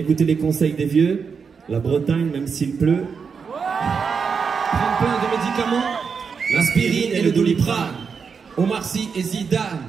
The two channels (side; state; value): left; quieter; 5.8 dB